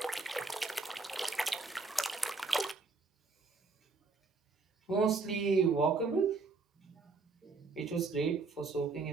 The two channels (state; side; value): quieter; left; 4.1 dB